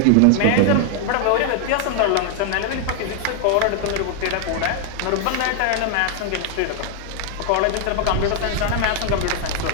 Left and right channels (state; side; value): different; both; correlation 0.00